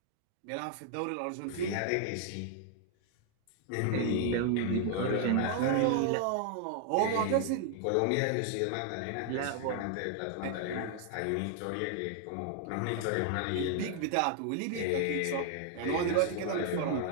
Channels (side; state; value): both; different; correlation 0.00